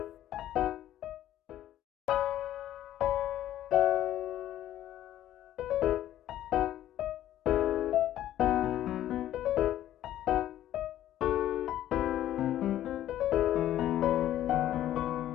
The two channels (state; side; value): quieter; right; 12.5 dB